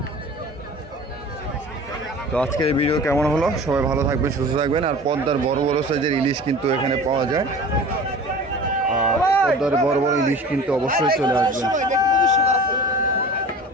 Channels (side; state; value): both; normal; correlation 0.40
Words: তো আজকের এই ভিডিও কেমন হলো, সবাই ভালো থাকবেন, সুস্থ থাকবেন। আর পদ্মার বড় বড় সাইজের ইলিশ কিন্তু এখানে পাওয়া যায়, আর পদ্মার বড় বড় ইলিশ কিন্তু অবশ্যই চলে আসবেন।